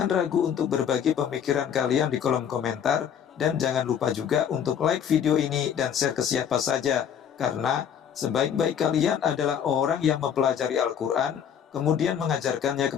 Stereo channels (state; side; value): quieter; right; 8.5 dB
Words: ragu untuk berbagi pemikiran kalian di kolom komentar, dan jangan lupa juga untuk like video ini dan share ke siapa saja, karena sebaik-baik kalian adalah orang yang mempelajari Al-Quran, kemudian mengajarkannya